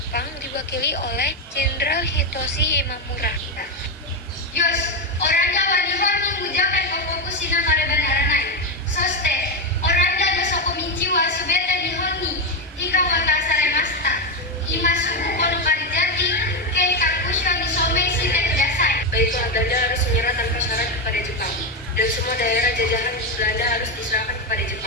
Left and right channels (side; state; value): both; normal; correlation 0.09